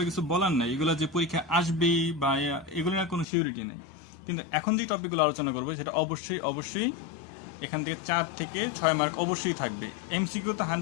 কিছু বলার নাই, এগুলো যে পরীক্ষা আসবেই বা এগুলো নিয়ে কোনো সিউরিটি নেই। কিন্তু এখন যে টপিকগুলো আলোচনা করবো সেটা অবশ্যই অবশ্যই এখান থেকে 4 থেকে 6 মার্ক অবশ্যই থাকবে। এমসিকিউ তো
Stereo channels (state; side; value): drops out; right; at 3.2 s